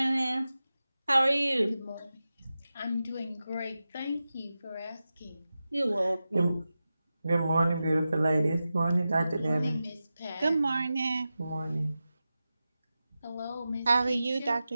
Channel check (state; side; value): inverted; both; correlation -0.93